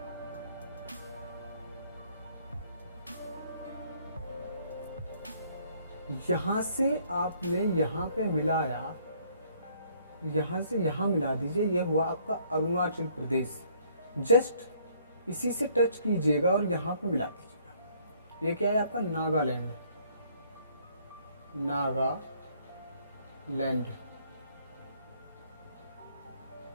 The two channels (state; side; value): inverted; both; correlation -0.63